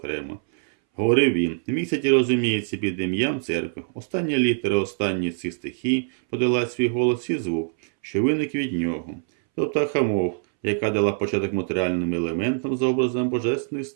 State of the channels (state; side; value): silent; left; 63 dB below the other